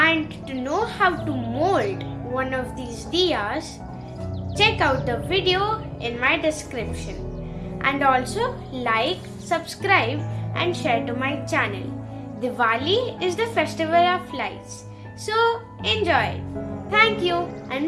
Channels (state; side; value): identical; both; correlation 1.00